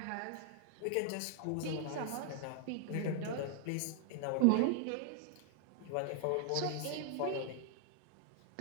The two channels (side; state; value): both; different; correlation 0.00